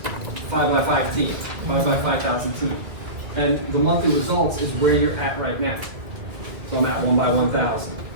5 by 5 team, 5 by 5,000 team. And the monthly results is where you're at right now. So I'm at 1 by 1,000.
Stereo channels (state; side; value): late; left; 2.4 ms